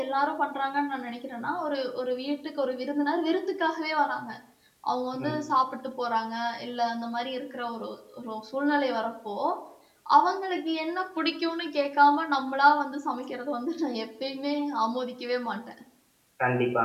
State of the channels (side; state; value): both; identical; correlation 1.00